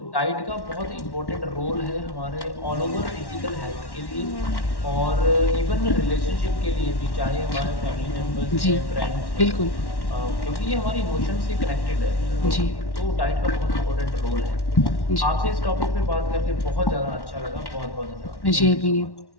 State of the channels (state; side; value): late; right; 1.1 ms